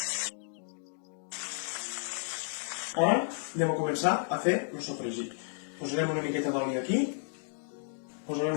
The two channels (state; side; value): silent; right; digital silence